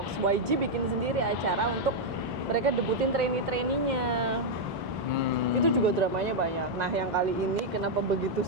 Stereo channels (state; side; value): normal; both; correlation -0.02